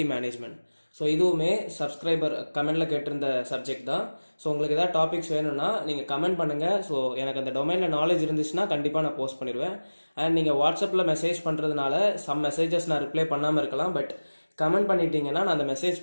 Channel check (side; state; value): both; inverted; correlation -1.00